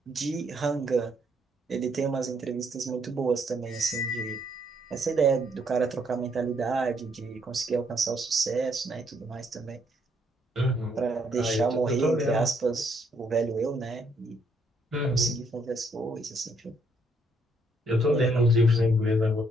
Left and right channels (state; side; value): normal; both; correlation 0.70